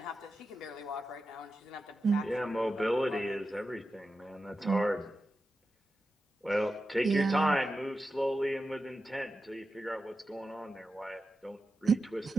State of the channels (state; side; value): normal; both; correlation 0.91